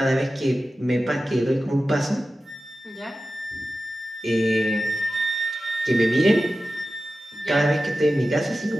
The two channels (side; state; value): both; normal; correlation 0.94